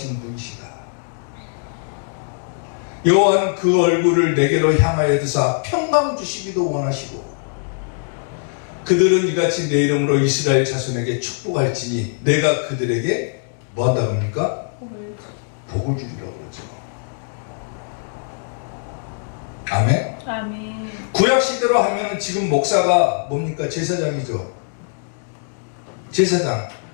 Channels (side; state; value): right; silent; 65 dB below the other